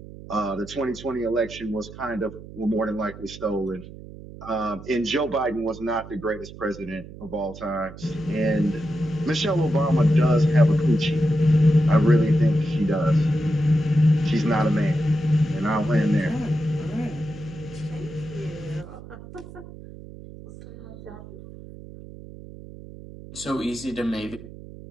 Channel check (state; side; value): noise; right; hum, 15 dB below the sound